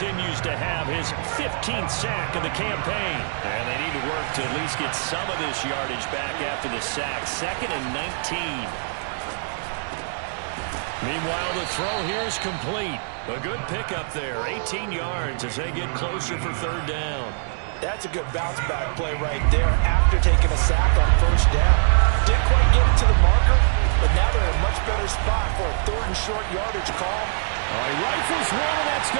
to have. His 15th sack of the campaign. And they need to work to at least get some of this yardage back after the sack. 2nd and 19. Meanwhile, the throw here is complete. A good pickup there. 18 yards as they get closer for 3rd down. That's a good bounce-back play right there after taking a sack on 1st down. Didn't quite get it to the marker, but now they're in a much better spot for a 3rd and short yardage call. All right, rifles one, and that's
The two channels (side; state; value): left; silent; digital silence